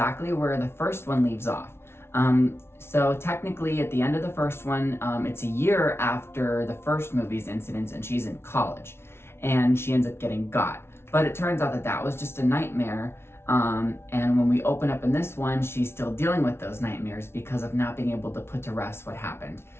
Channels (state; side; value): late; right; 0.12 ms